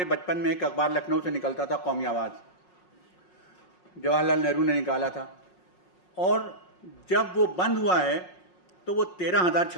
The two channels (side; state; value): right; late; 5.5 ms